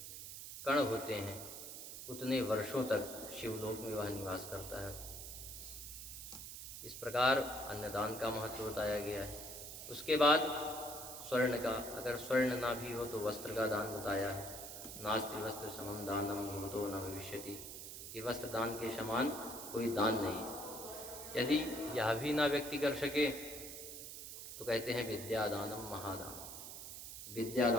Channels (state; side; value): noise; right; hiss, 9 dB below the sound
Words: कण होते हैं उतने वर्षों तक शिवलोक में वह निवास करता है। इस प्रकार अन्नदान का महत्व बताया गया है। उसके बाद स्वर्ण का, अगर स्वर्ण ना भी हो तो वस्त्र का दान बताया है। नास्ति वस्त्र समम दानम भूतो न भविष्यति, कि वस्त्र दान के समान कोई दान नहीं। यदि यह भी ना व्यक्ति कर सके तो कहते हैं विद्यादानम महादान,